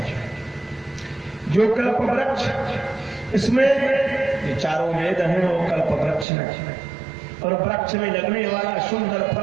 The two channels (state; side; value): drops out; left; at 6.2 s